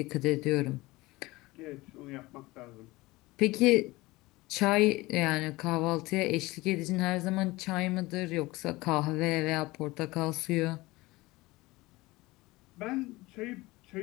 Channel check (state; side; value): quieter; right; 20.7 dB